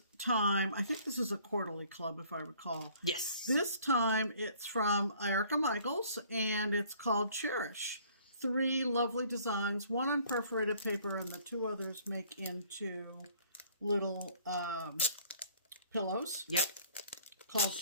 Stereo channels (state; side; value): inverted; both; correlation -0.57